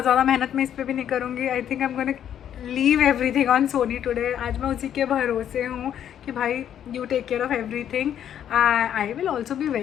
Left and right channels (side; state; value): right; quieter; 9.9 dB